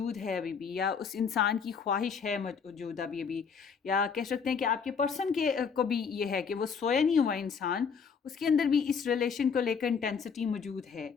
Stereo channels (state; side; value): quieter; right; 6.1 dB